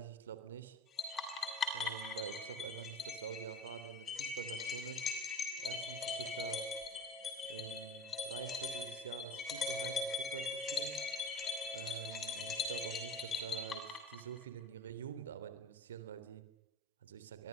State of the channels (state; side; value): normal; both; correlation 0.36